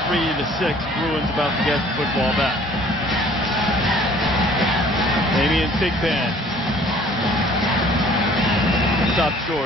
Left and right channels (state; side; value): normal; both; correlation 0.54